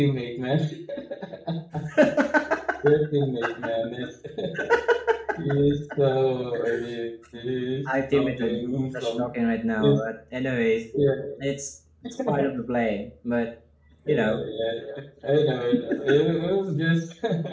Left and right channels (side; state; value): both; identical; correlation 1.00